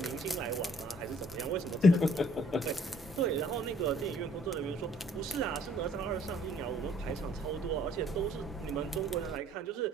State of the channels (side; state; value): both; normal; correlation 0.60